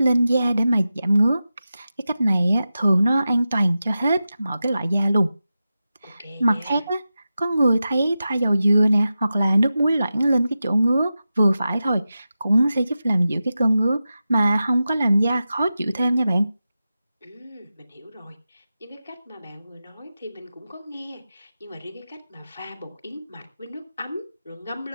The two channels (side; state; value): both; inverted; correlation -0.92